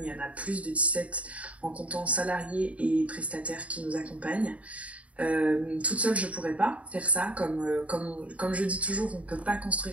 Il y en a plus de 17 en comptant salariés et prestataires qui nous accompagnent. Toute seule je pourrais pas faire ça. Comme je dis toujours, on peut pas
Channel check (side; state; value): left; late; 0.066 ms